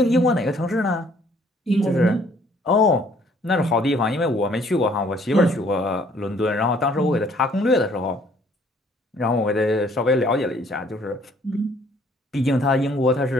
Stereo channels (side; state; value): both; normal; correlation 0.61